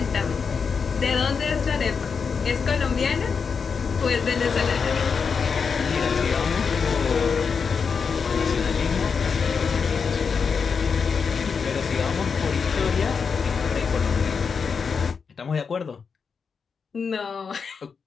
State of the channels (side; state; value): right; quieter; 5.7 dB